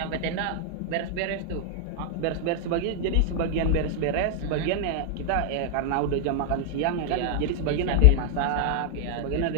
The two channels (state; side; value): different; both; correlation 0.00